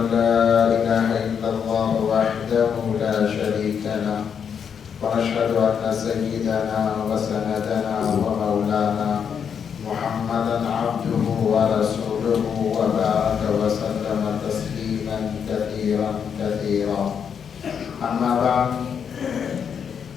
لا إله إلا الله وحده لا شريك له، ونشهد أن سيدنا وسندنا ومولانا محمدا عبده ورسوله وبارك وسلم تسليما كثيرا كثيرا. أما بعد،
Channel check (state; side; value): quieter; right; 7.3 dB